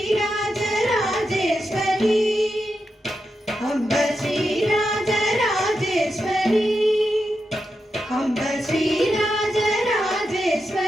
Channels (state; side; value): normal; both; correlation 0.87